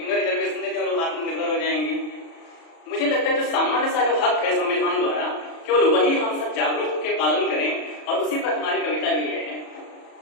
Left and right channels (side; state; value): right; late; 36 ms